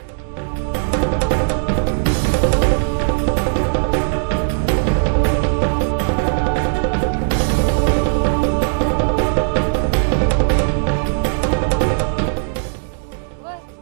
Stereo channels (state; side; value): silent; left; digital silence